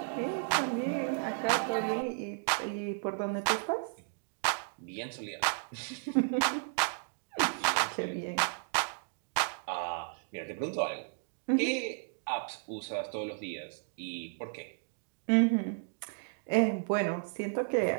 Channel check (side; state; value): left; silent; digital silence